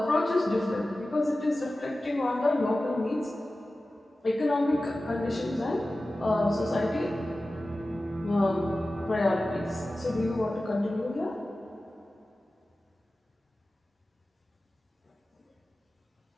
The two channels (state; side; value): normal; both; correlation 0.96